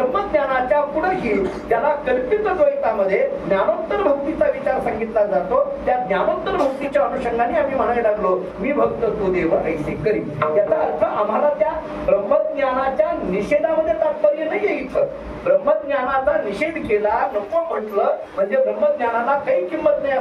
पुढेही ज्याला कल्पित द्वैतामध्ये ज्ञानोत्तर भक्तीचा विचार सांगितला जातो, त्या ज्ञानोत्तर भक्तीच्या अनुषंगाने आम्ही म्हणायला लागलो मी भक्त तू देव ऐसे करी. याचा अर्थ आम्हाला त्या ब्रह्मज्ञानाच्या निषेधामध्ये तात्पर्य नाहीये. इथं ब्रह्मज्ञानाचा निषेध केला, नको म्हटलं म्हणजे ब्रह्मज्ञानाला काही किंमत नाही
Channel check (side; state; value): both; identical; correlation 1.00